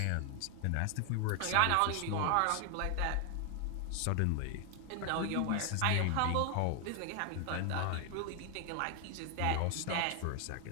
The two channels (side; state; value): both; different; correlation 0.00